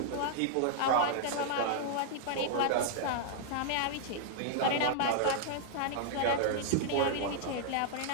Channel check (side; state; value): both; different; correlation -0.01